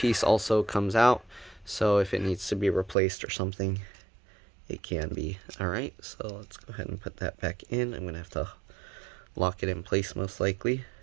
also comes out, so if it needs to be replaced or something, it can be. Alright, so let's go ahead and put that back in. I'm going to have to lock it in place most likely.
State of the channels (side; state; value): left; drops out; at 3.0 s